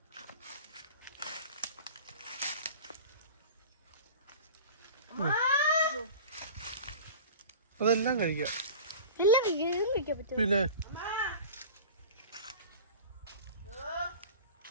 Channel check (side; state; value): both; inverted; correlation -0.38